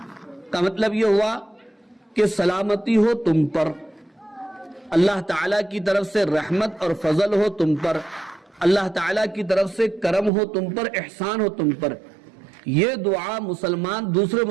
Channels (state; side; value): drops out; left; at 10.3 s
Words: کا مطلب یہ ہوا کہ سلامتی ہو تم پر, اللہ تعالیٰ کی طرف سے رحمت اور فضل ہو تم پر, اللہ تعالیٰ کی طرف سے کرم ہو تم پر, احسان ہو تم پر. یہ دعا مسلمان دوسرے